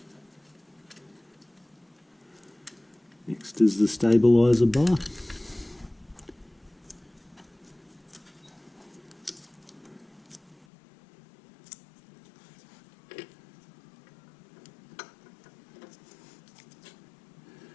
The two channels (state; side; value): drops out; right; at 10.7 s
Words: Next is the stabilizer bar.